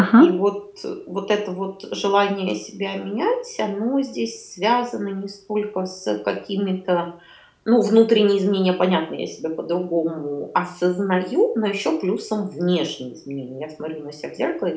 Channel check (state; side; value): identical; both; correlation 1.00